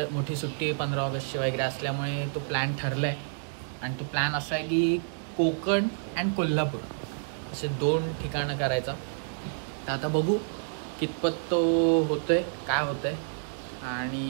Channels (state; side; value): silent; left; digital silence